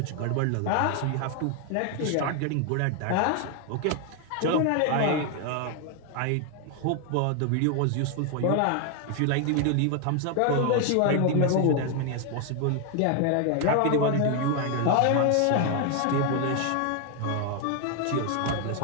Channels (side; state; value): both; different; correlation 0.00